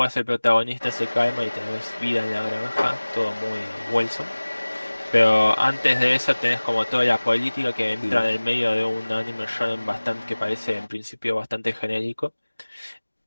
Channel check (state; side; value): inverted; both; correlation -1.00